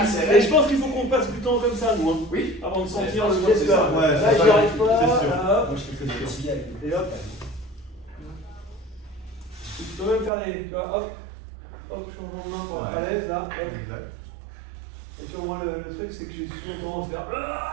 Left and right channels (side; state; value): left; drops out; at 10.3 s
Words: Et je pense qu'il faut qu'on passe du temps comme ça, nous. Hein. Oui. Avant de sentir Ouais, le je pense geste que c'est là. ça. Ouais, Là, c'est j'y ça. arrive pas. C'est sûr. Là, hop. Moi, je fais que ça. Et hop. Tu peux même faire des. Tu vois, hop. Hop, changement de main pour être à l'aise, là. Hop. Exact. Et tu vois, moi, le truc, c'est que j'ai souvent tendance à